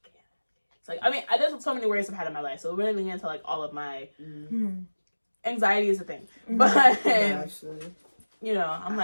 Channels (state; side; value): inverted; both; correlation -1.00